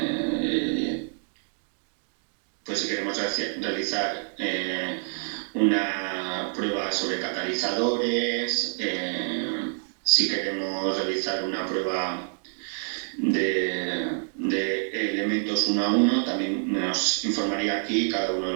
si queremos realizar una prueba sobre catalizadores, si queremos realizar una prueba de elementos uno a uno, también nos informaría aquí cada uno de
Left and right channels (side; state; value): left; silent; digital silence